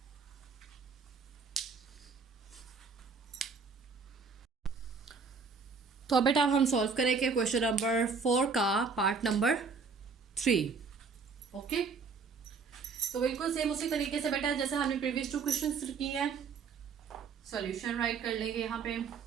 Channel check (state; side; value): quieter; left; 5.1 dB